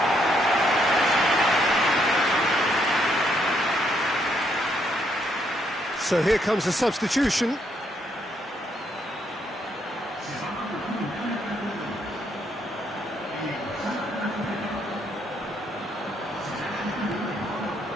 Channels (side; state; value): both; normal; correlation 0.73